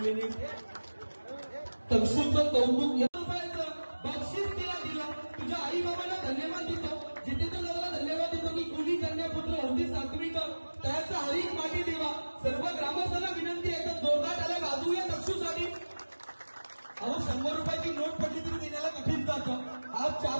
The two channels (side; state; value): both; inverted; correlation -1.00